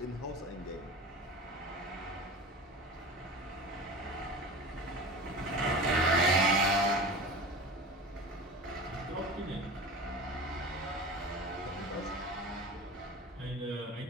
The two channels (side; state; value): both; normal; correlation 0.34